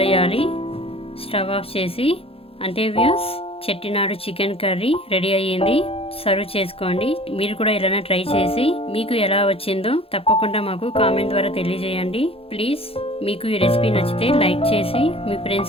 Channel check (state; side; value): late; right; 0.27 ms